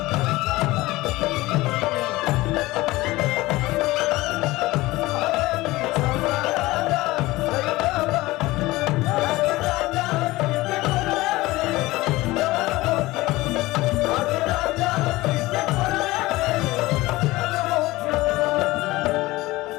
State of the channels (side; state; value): right; quieter; 19.4 dB